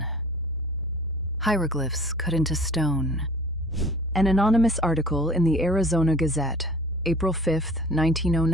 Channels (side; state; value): both; normal; correlation 0.47